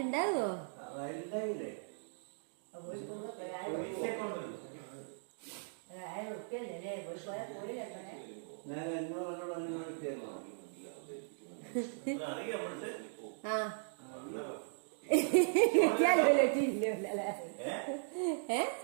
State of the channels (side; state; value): left; silent; digital silence